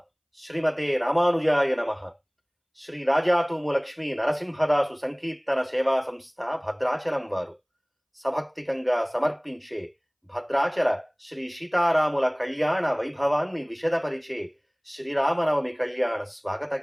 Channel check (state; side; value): identical; both; correlation 1.00